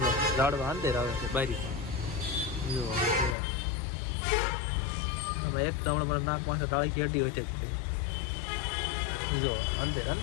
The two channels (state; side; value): drops out; right; at 3.4 s